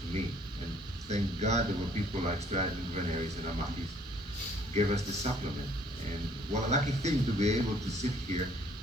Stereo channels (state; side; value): normal; both; correlation 0.60